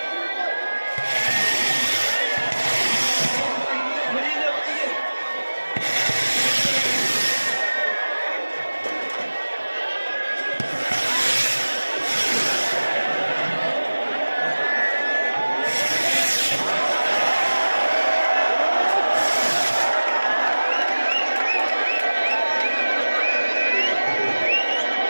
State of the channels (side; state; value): both; inverted; correlation -1.00